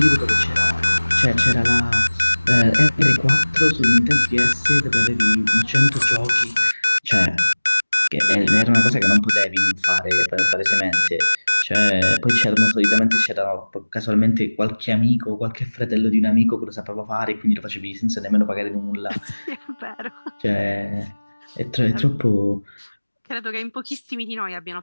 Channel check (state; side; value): inverted; both; correlation -1.00